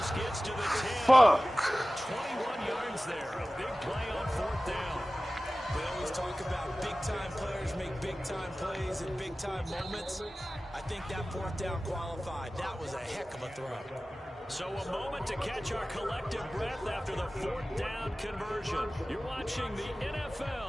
gets to the 10. Fuck. 21 yards there. A big play on 4th down. We always talk about big-time players make big-time plays in big-time moments. I think that 4th down qualified. That was a heck of a throw. So a moment to catch our collective breath after the 4th down conversion. You're watching the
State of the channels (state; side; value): normal; both; correlation 0.97